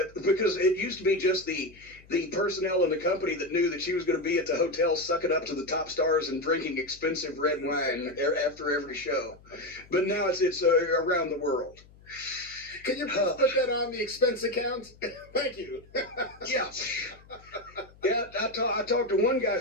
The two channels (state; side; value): noise; left; hum, 25 dB below the sound